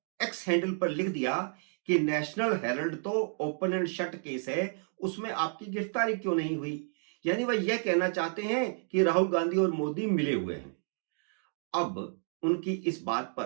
एक्स हैंडल पर लिख दिया कि नेशनल हेराल्ड तो ओपन एंड शट केस है, उसमें आपकी गिरफ्तारी क्यों नहीं हुई। यानी वह यह कहना चाहते हैं कि राहुल गांधी और मोदी मिले हुए हैं। अब उनकी इस बात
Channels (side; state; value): left; silent; 57 dB below the other